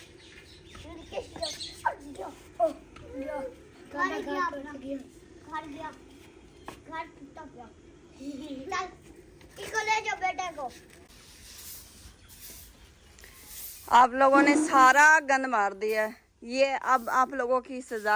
घर टूटा गया। चल इसको ले जाओ बेटे को। आप लोगों ने सारा गंद मार दिया है। ये अब आप लोगों की सजा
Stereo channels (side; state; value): both; identical; correlation 1.00